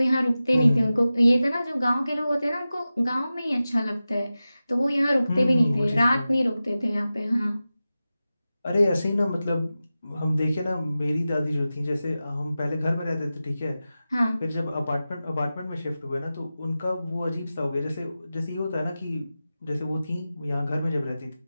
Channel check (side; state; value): both; inverted; correlation -0.94